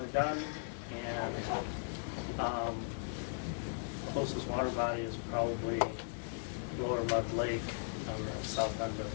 of Dunn, and closest water body is probably Lower Mud Lake on the south end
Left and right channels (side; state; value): right; silent; digital silence